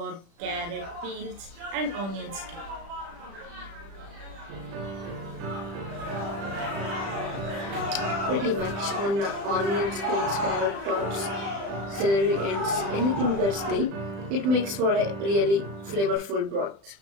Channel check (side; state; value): left; late; 36 ms